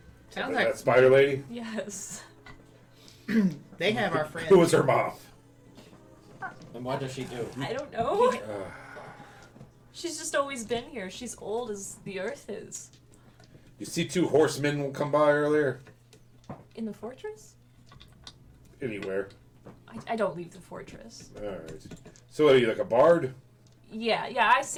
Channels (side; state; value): both; identical; correlation 1.00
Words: Sounds That like spider lady? Yes. they have our friends. Who was her mom? And what does she do? I don't know. She's just always been here. She's old as the earth is. You see 2 horsemen come by earlier? In the fortress? Anywhere. I don't leave the fortress. Alright. So are you like a bard? Yeah, I